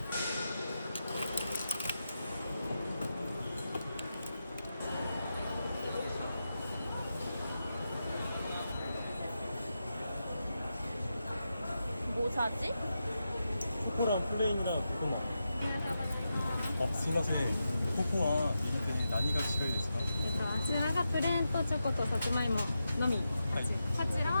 뭐 사지? 코코랑 플레인이랑 코코넛.すいません。ココア入れて何が違いですか？あちらがプレーンとチョコとさつまいものみ、はい。こちら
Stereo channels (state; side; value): inverted; both; correlation -0.89